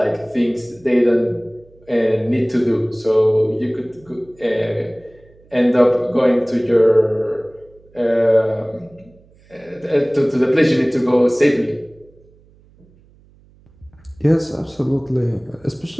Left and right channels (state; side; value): noise; right; hum, 29 dB below the sound